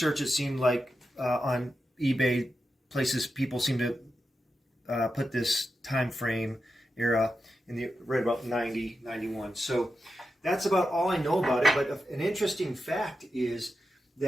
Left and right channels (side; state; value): both; normal; correlation 0.89